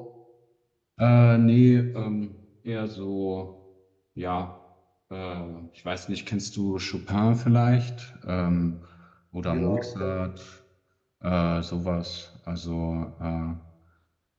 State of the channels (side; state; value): both; identical; correlation 1.00